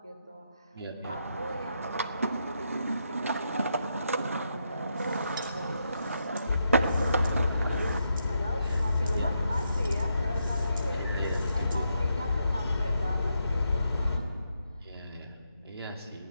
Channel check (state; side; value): inverted; both; correlation -0.80